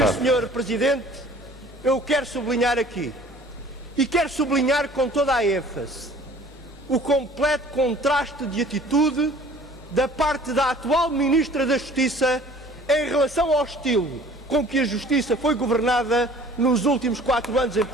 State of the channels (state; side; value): normal; both; correlation 0.50